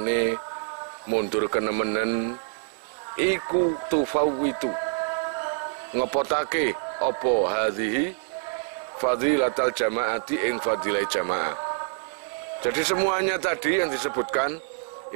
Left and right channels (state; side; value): silent; left; 61 dB below the other